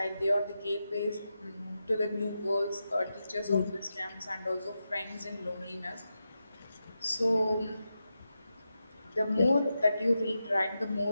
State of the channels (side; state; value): both; inverted; correlation -0.89